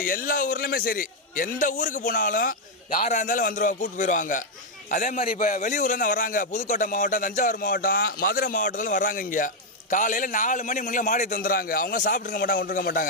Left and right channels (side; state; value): both; normal; correlation 0.00